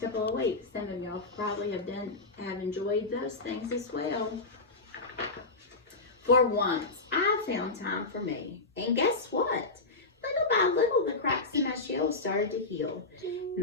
couple of weeks, some of y'all probably have enjoyed those things as well. For once, I found time for me. And guess what? Little by little, the cracks in my shell started to heal.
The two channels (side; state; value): right; quieter; 3.4 dB